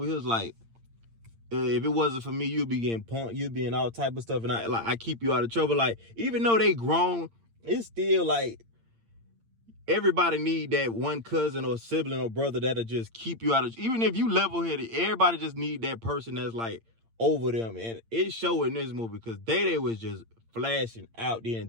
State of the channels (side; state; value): left; late; 8.8 ms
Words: he was like, if it wasn't for me, you'd be getting punked, you'd be in all type of stuff, and I keep you out of trouble. Like, even though they grown, it's still like everybody need that one cousin or sibling or brother that'll just keep you out of, even if you level-headed, everybody just need that person that's like over them. And it showed in this movie, because Day was just flashing out the